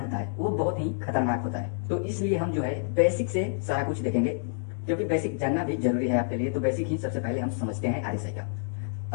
होता है वो बहुत ही खतरनाक होता है। तो इसलिए हम जो है बेसिक से सारा कुछ देखेंगे, क्योंकि बेसिक जानना भी जरूरी है आपके लिए। तो बेसिक ही सबसे पहले हम समझते हैं RSI का।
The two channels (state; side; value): silent; right; digital silence